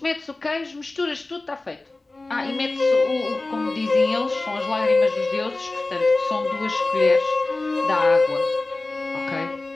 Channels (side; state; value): right; quieter; 3.1 dB